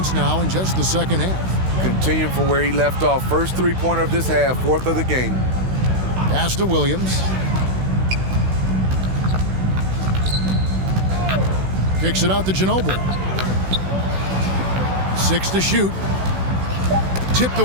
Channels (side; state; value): left; late; 16 ms